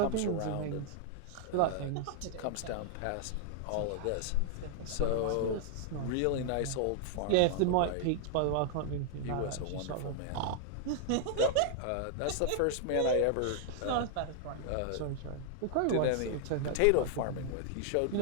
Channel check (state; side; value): different; both; correlation -0.01